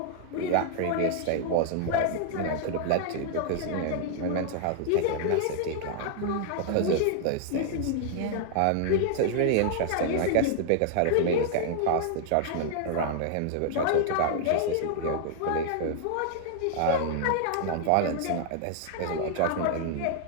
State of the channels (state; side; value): different; both; correlation 0.00